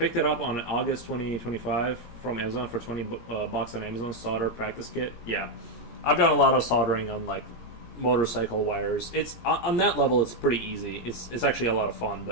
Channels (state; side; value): late; right; 17 ms